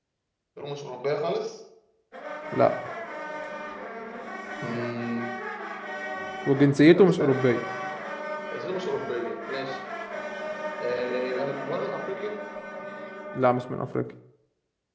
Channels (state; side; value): identical; both; correlation 1.00